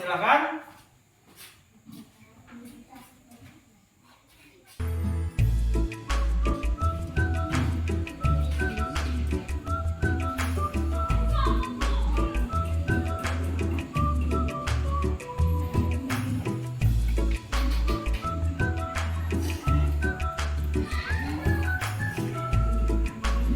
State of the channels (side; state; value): both; identical; correlation 1.00